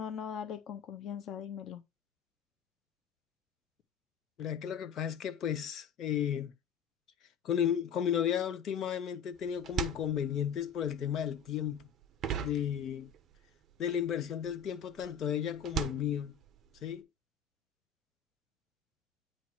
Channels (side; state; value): right; quieter; 6.6 dB